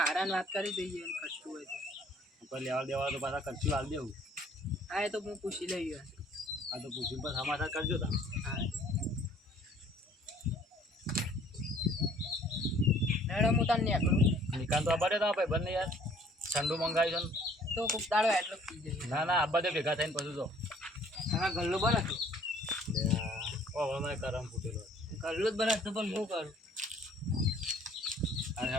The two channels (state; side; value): normal; both; correlation 0.57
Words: વાત કરી દઈએ ખર્ચું હોય તો કોઈ લેવા દેવા તો પાછા ખર્ચી હાલ દેવું. હા એ તો હું પૂછી લઈ ગયો. આ તો પૂછીને પછી સમાચાર કરજો તમે. હા હેડો હું તને નીકળું. નિકાલ તો આબા દે તમારા ભાઈ બંને યાર ઠંડુ મંગાવ્યું છે તો કોક દાડો એટલો પી જઈએ. ને. ના આબા દે ભેગા થઈને પછી જો. હા ગલ્લો બને તું. ઓહો મને કરમ ફૂટેલો. ગલ્લો જ બને તું પણ હું કરું. અને